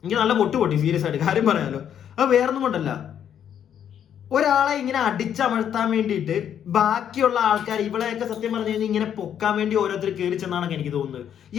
എനിക്ക് നല്ല പൊട്ടി സീരിയസ് ആയിട്ട് കാര്യം പറയാലോ. അത് വേറൊന്നും കൊണ്ടല്ല, ഒരാളെ ഇങ്ങനെ അടിച്ചമർത്താൻ വേണ്ടിയിട്ട് ബാക്കിയുള്ള ആൾക്കാർ ഇവളെയൊക്കെ സത്യം പറഞ്ഞു കഴിഞ്ഞാൽ ഇങ്ങനെ പൊക്കാൻ വേണ്ടി ഓരോരുത്തർ കയറി ചെന്നാണ് എനിക്ക് തോന്നുന്നത്.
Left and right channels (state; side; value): quieter; right; 9.2 dB